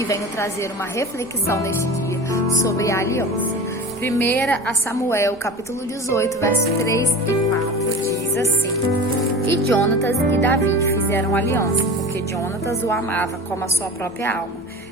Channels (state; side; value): normal; both; correlation 0.34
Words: venho trazer uma reflexão neste dia sobre a aliança. 1 Samuel, capítulo 18, versos 3 e 4, diz assim: E Jonatas e Davi fizeram aliança, porque Jonatas o amava como a sua própria alma.